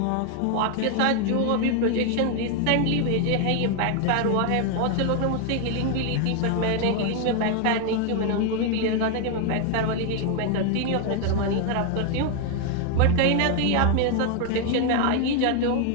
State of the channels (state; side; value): different; both; correlation 0.01